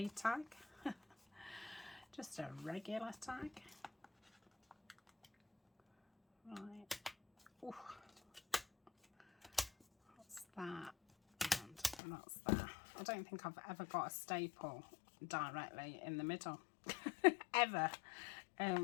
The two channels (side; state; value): right; drops out; at 12.0 s